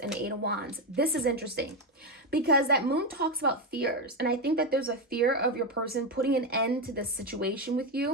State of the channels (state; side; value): normal; both; correlation 0.10